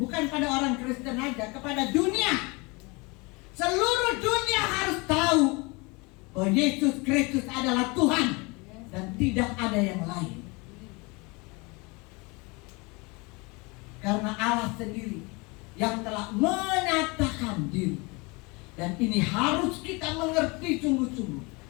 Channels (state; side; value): quieter; right; 27.3 dB